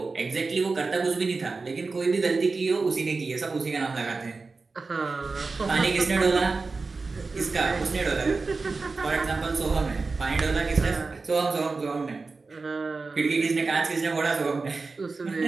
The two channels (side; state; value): left; quieter; 4.0 dB